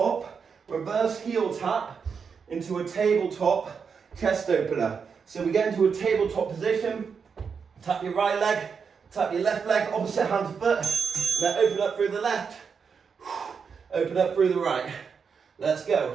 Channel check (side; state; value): left; quieter; 6.0 dB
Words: reverse heel tap into a tabletop chest opener. So we get into a tabletop position, tap your right leg, tap your left leg, opposite hand to foot, and then open up through the left, open up through the right. Let's go.